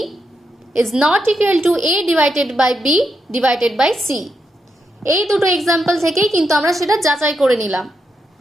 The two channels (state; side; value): normal; both; correlation 0.83